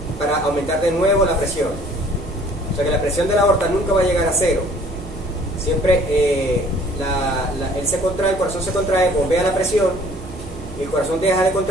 para aumentar de nuevo la presión. O sea que la presión de la aorta nunca va a llegar a cero. Siempre él se contrae, el corazón se contrae, bombea la presión, el corazón deja de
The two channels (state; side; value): noise; right; hum, 15 dB below the sound